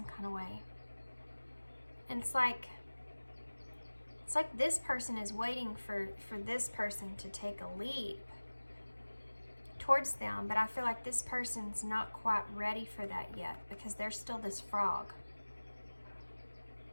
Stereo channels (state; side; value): inverted; both; correlation -1.00